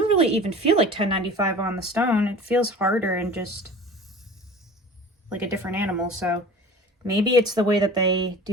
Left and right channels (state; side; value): normal; both; correlation 0.40